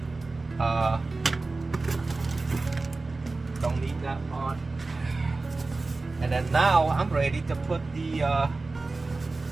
don't need that part. And then now I'm ready to put the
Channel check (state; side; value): quieter; left; 3.5 dB